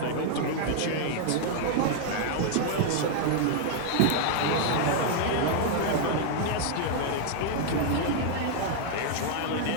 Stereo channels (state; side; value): different; both; correlation 0.00